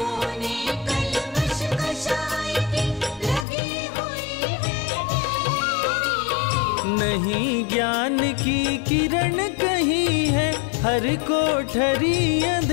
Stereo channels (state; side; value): drops out; right; at 3.5 s